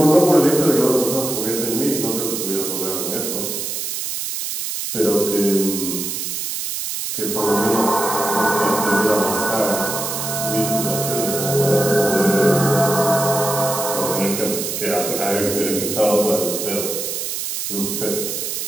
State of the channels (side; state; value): right; noise; hiss, 4 dB below the sound